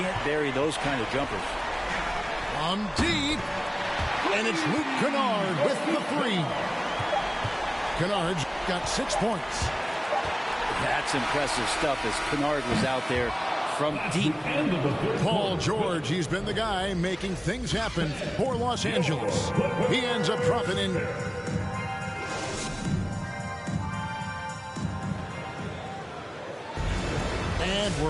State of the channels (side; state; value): both; identical; correlation 1.00